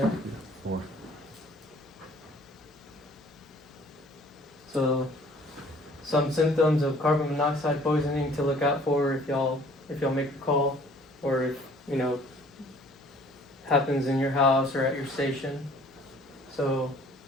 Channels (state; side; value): normal; both; correlation 0.54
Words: 4. So, some symptoms of carbon monoxide poisoning to look out for if y'all make a call, or if happens in your house or at your station. So,